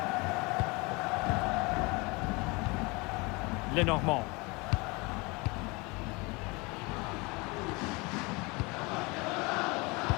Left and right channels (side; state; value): right; quieter; 26.4 dB